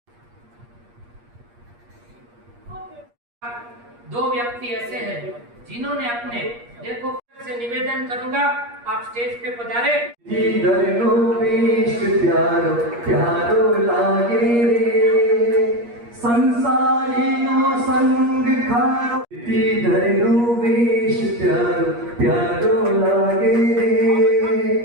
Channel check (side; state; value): left; late; 8.4 ms